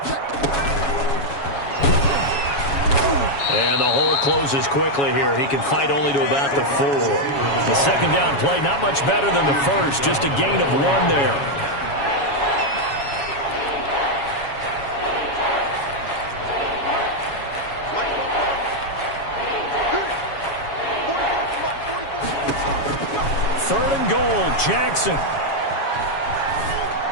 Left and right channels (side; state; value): right; late; 7.2 ms